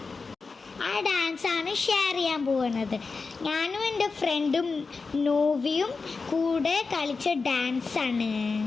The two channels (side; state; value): right; quieter; 4.4 dB